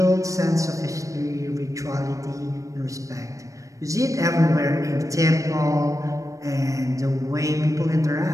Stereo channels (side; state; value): left; late; 0.16 ms